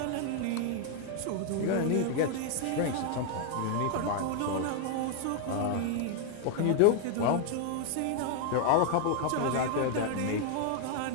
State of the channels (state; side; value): different; both; correlation 0.00